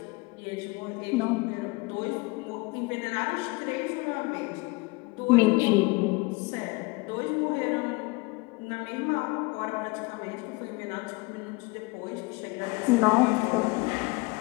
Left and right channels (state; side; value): quieter; right; 25.5 dB